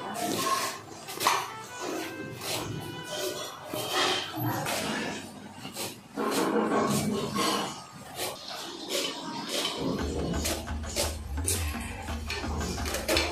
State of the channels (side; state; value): both; identical; correlation 1.00